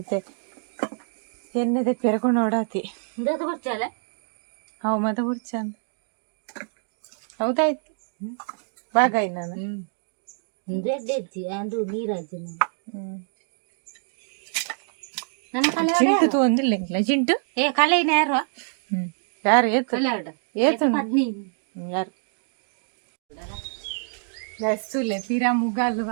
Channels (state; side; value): silent; left; digital silence